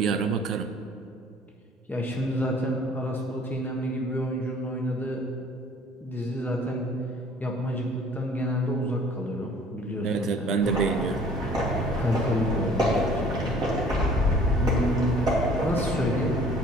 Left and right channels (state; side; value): normal; both; correlation 0.52